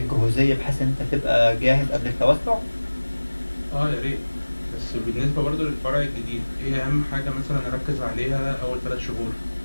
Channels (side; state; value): both; inverted; correlation -1.00